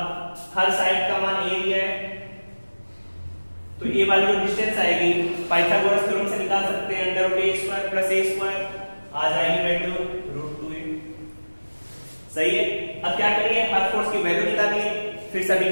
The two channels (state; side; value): inverted; both; correlation -1.00